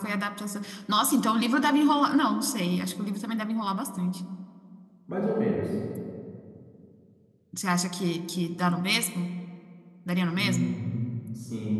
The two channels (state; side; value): identical; both; correlation 1.00